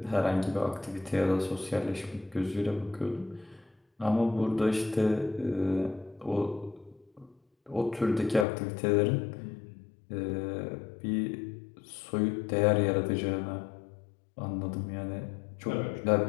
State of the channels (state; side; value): drops out; right; at 8.5 s